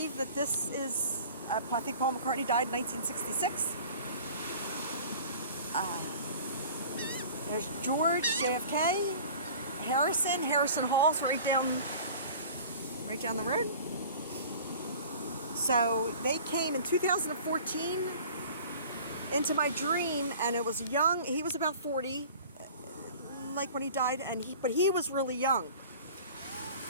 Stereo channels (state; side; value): inverted; both; correlation -0.44